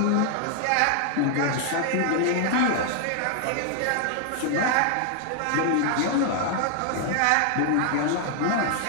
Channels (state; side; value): different; both; correlation 0.00